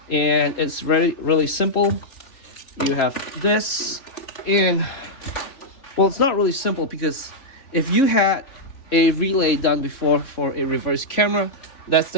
and it's really simple. You have this, and well, it's not really simple, because if you had a relay done before for a reverse camera, that's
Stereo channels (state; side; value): late; right; 3.4 ms